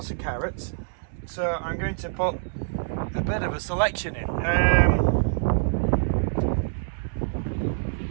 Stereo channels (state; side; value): silent; left; 61 dB below the other